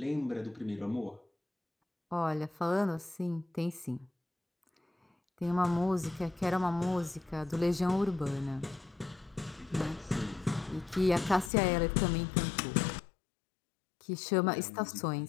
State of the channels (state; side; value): drops out; right; at 11.5 s